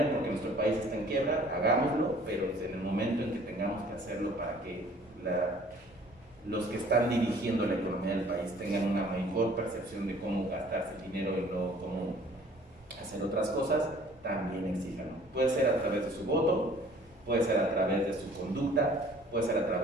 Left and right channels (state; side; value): normal; both; correlation 0.53